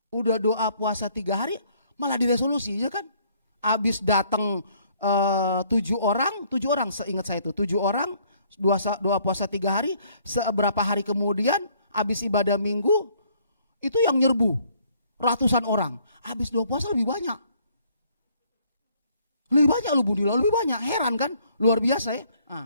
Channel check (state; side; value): inverted; both; correlation -0.63